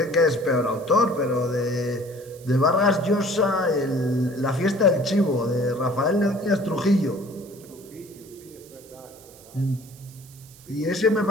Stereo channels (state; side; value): noise; right; hiss, 23 dB below the sound